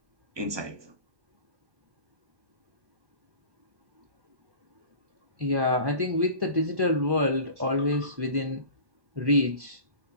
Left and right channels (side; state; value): left; late; 1.1 ms